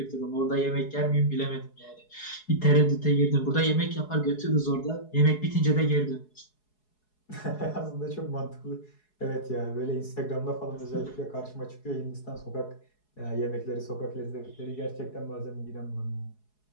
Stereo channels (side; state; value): right; late; 4.7 ms